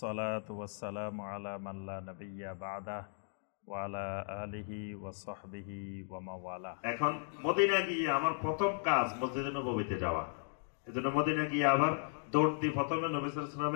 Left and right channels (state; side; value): silent; right; 54 dB below the other